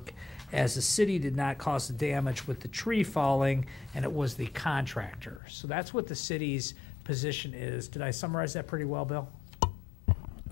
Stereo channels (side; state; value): right; drops out; at 5.4 s